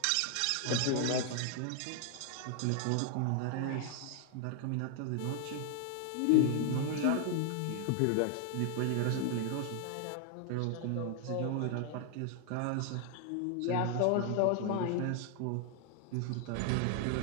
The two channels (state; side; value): different; both; correlation 0.00